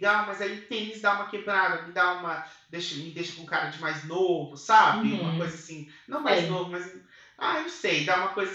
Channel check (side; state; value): both; identical; correlation 1.00